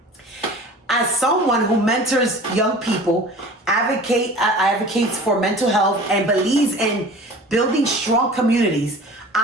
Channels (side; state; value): both; normal; correlation 0.41